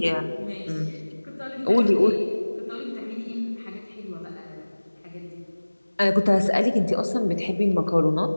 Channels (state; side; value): inverted; both; correlation -1.00